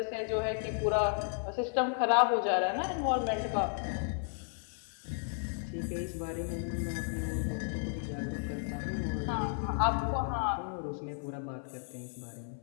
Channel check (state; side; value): silent; right; 55 dB below the other